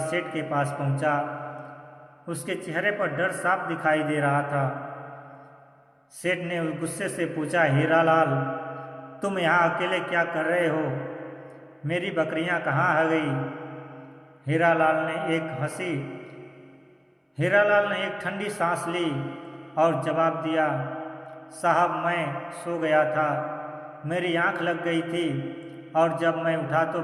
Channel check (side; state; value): both; identical; correlation 1.00